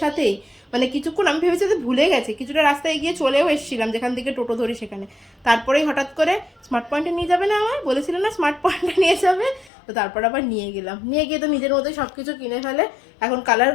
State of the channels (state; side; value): drops out; right; at 9.7 s